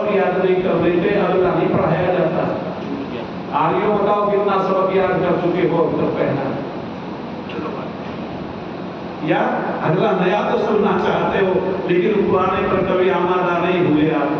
याद नहीं कर लेते अगला नहीं पढ़ाया जाता। आर्यों बताओ कितना सबक याद कर चुके हो अब तक पहला, या अगला नया तो सुनना चाहते हो, लेकिन पुराने पर कभी आमादा नहीं हुए आप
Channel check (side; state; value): both; identical; correlation 1.00